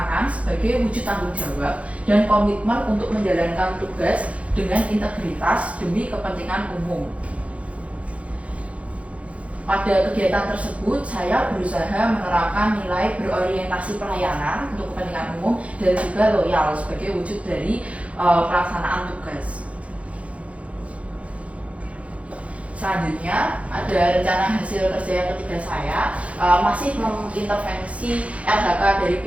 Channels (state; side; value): late; left; 0.064 ms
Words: sebagai wujud tanggung jawab dan komitmen untuk menjalankan tugas dengan integritas demi kepentingan umum. Pada kegiatan tersebut, saya berusaha menerapkan nilai berorientasi pelayanan untuk kepentingan umum dan juga loyal sebagai wujud dari pelaksanaan tugas. Selanjutnya, ada rencana hasil kerja yang ketiga saya, masih mengintervensi RHK dari